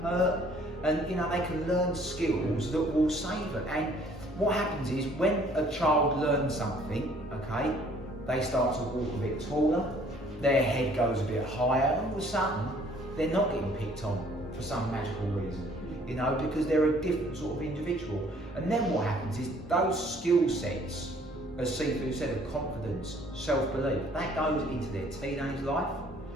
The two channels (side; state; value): both; normal; correlation 0.58